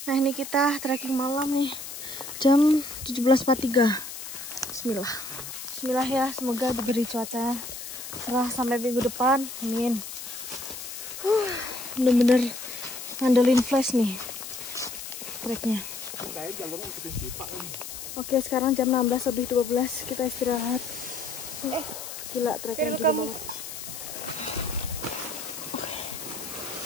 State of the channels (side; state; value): left; noise; hiss, 9 dB below the sound